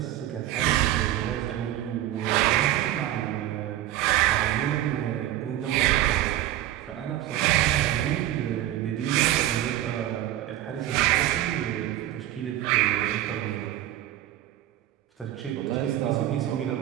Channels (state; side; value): quieter; left; 13.5 dB